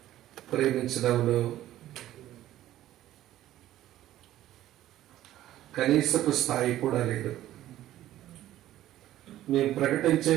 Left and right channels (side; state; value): left; quieter; 13.7 dB